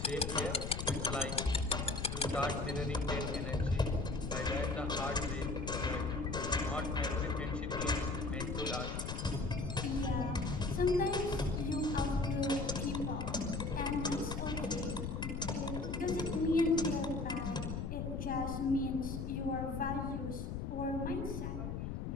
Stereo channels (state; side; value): noise; left; rumble, 3 dB below the sound